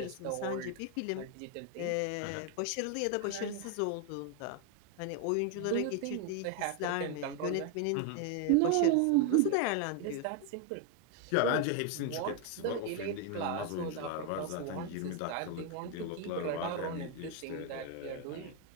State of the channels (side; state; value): both; different; correlation 0.01